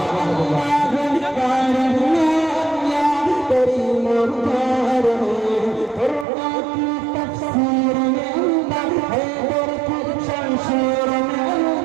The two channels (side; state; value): left; drops out; at 6.2 s